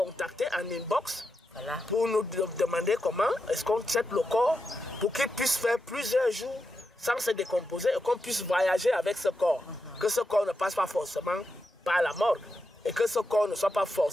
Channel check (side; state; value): both; normal; correlation 0.87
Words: en inbox pour nous demander comment est-ce qu'on traite le corps pour qu'il puisse faire plusieurs jours sans se décomposer et qu'on puisse voyager avec ce corps. Que ce corps ne passe pas forcément par la mort et que ce corps ne soit pas